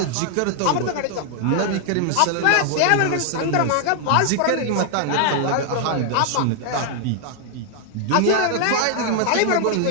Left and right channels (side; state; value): both; different; correlation 0.00